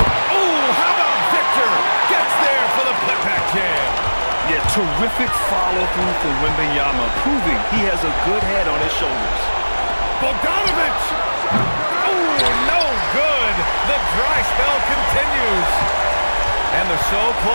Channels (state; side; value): inverted; both; correlation -1.00